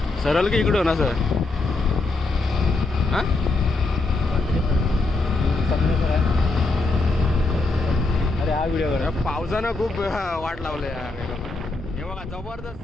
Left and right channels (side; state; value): right; quieter; 3.3 dB